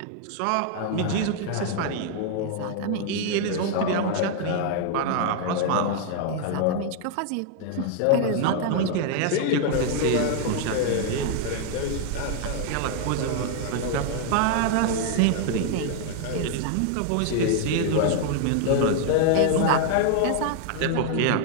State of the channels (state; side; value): different; both; correlation 0.00